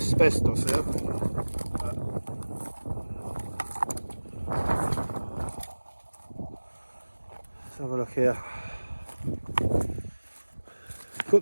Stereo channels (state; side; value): inverted; both; correlation -1.00